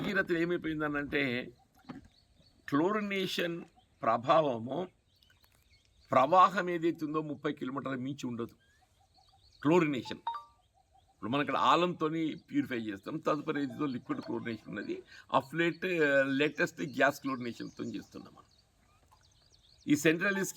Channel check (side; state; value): both; identical; correlation 1.00